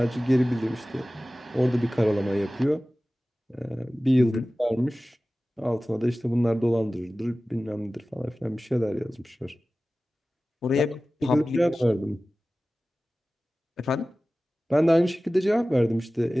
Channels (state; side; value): normal; both; correlation 0.97